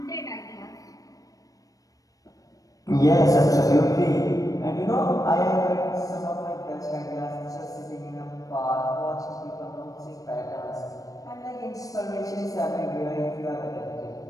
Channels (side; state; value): right; late; 0.17 ms